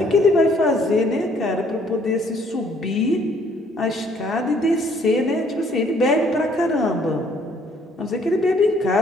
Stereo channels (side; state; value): both; normal; correlation 0.63